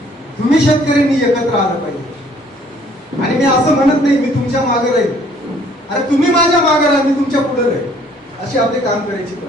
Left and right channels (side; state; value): both; normal; correlation 0.60